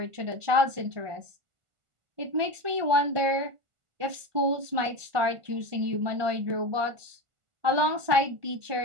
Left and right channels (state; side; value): late; left; 1.4 ms